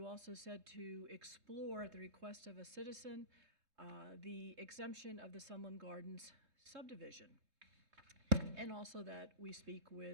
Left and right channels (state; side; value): late; left; 3.2 ms